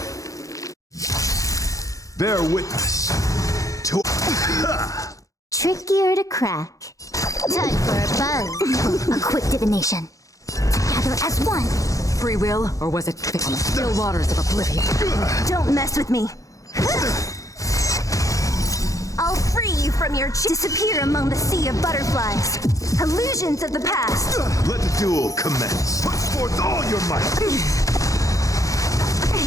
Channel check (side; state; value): right; late; 0.16 ms